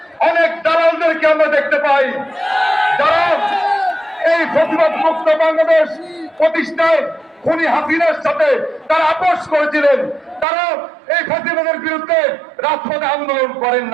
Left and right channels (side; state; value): left; drops out; at 10.5 s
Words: অনেক দালালদেরকে আমরা দেখতে পাই, যারা এই ফ্যাসিবাদ মুক্ত বাংলাদেশ প্রতিষ্ঠায় খুনি হাসিনার সাথে তারা আপোষ করেছিলেন। তারা এই ফ্যাসিবাদের বিরুদ্ধে রাজপথে আন্দোলন করেন